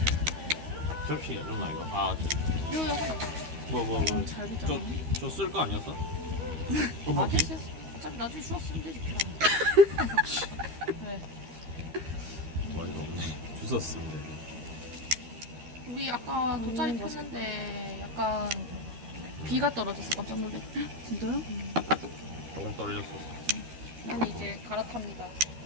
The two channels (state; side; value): late; left; 13 ms